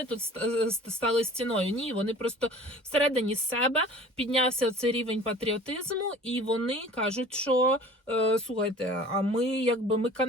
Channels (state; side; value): normal; both; correlation 0.45